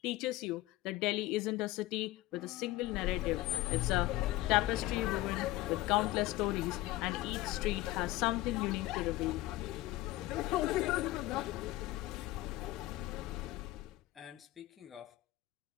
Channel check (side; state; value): right; quieter; 17.3 dB